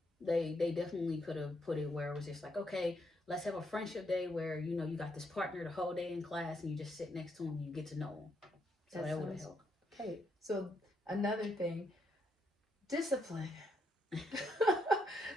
They definitely could have put it where it was just like, okay, let's have a friendship day where, you got this partner the whole day in class and you just sit next to him and you get to know him. So that would have helped. Okay, so another thing, discipline.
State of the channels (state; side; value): normal; both; correlation 0.77